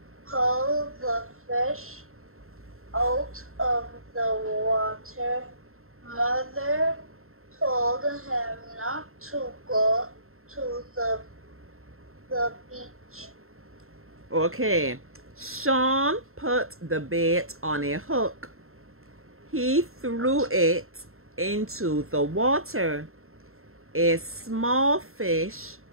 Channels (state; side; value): late; left; 0.62 ms